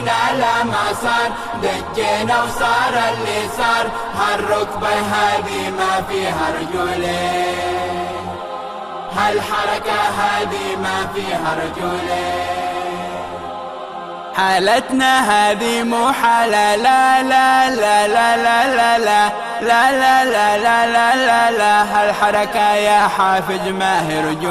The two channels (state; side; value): identical; both; correlation 1.00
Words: لما صار دجينا وصار اللي صار، هالركبة هذه ما فيها رجولي، هالحركة هذه ما فيها رجولي. حالتنا هذه مو حالة، لا لا لا لا لا لا لا لا لا لا لا لا لا لا. هالحركة يا حافز ما هي